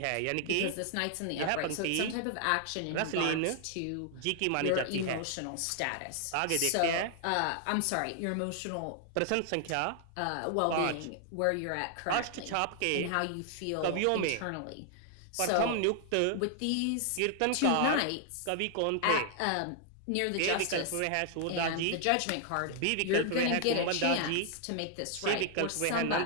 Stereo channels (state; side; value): different; both; correlation 0.00